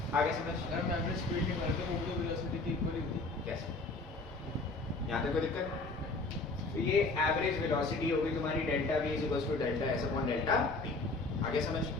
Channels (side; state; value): right; quieter; 3.3 dB